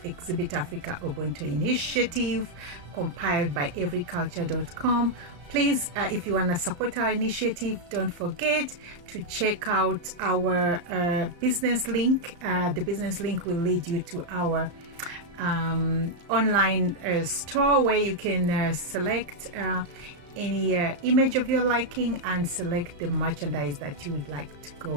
Exhibit Africa Ubuntu Initiative, compiled by everyculture.com. Please, if you want to support our initiative, don't forget to check out our business link. The business link will lead you to our online store where you can select any image of your liking and select the merchandise that you would like to go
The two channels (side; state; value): left; late; 35 ms